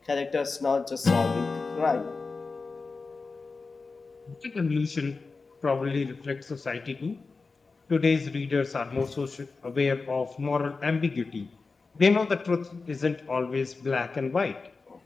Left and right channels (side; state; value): right; quieter; 4.2 dB